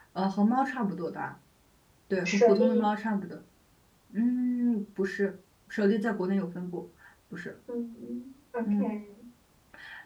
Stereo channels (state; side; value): identical; both; correlation 1.00